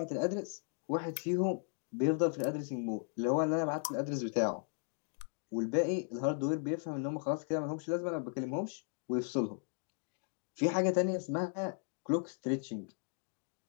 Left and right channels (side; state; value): right; silent; 54 dB below the other